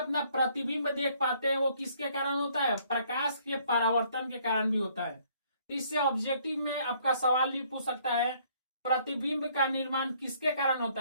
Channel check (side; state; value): both; inverted; correlation -0.64